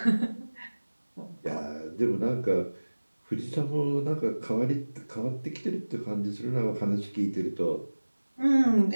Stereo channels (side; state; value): both; inverted; correlation -1.00